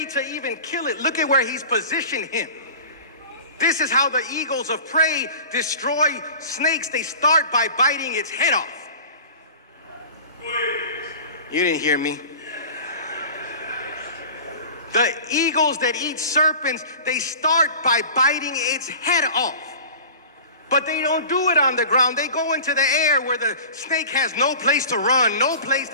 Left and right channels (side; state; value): both; inverted; correlation -0.38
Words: to even kill it. Look at where he's positioned him. This is how the eagles of prey destroy snakes. They start by biting its head off. You didn't hear me. The eagles that eat serpents, they start by biting its head off. But they don't do it on the ground. They go into the air where the snake has no place to run, no place